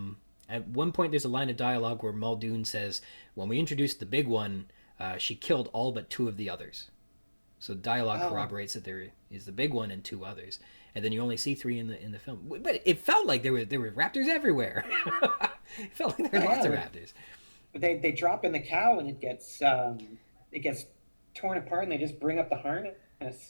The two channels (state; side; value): inverted; both; correlation -1.00